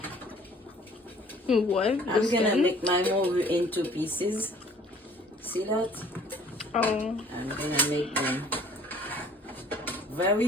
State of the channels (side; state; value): both; normal; correlation 0.55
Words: What? I'm gonna make my mogu into pieces. See that? Oh. I'm gonna make them very